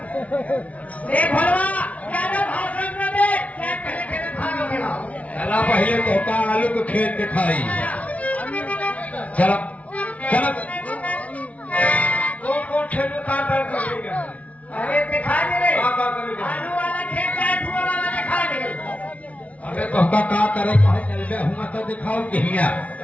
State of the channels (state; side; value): late; right; 0.067 ms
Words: देख भलवा ज्यादा भाषण न दे, खेत पहले खेत खाना खिलाओ। चला पहले तो का आलू को खेत दिखाई। चलो चलो कौन खेत में काम करेगा? अरे दिखा दे रे, काम करेगा। आलू वाला खेत का धुआं वाला दिखा दे। अबे तो का करे कहे चलबे हुआ तो दिखाओ कहिया।